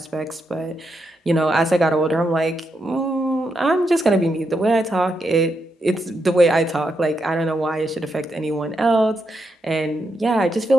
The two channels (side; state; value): both; normal; correlation 0.82